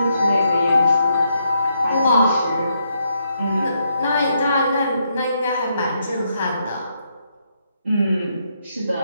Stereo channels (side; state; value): both; inverted; correlation -0.77